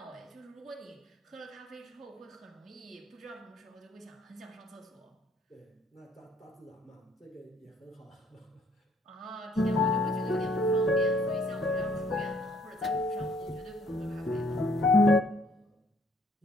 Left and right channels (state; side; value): normal; both; correlation 0.63